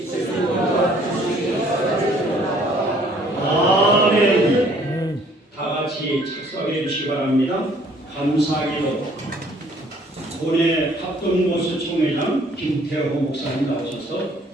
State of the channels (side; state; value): both; normal; correlation 0.59